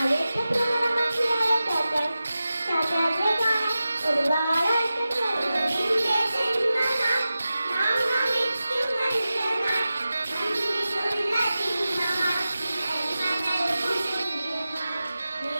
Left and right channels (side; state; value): both; inverted; correlation -0.94